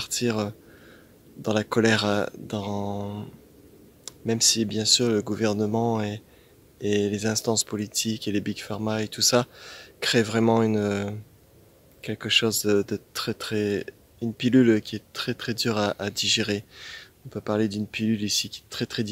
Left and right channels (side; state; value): both; identical; correlation 1.00